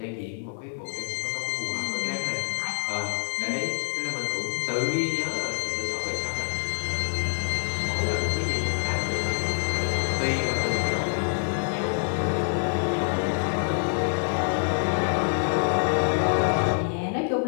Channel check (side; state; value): right; silent; digital silence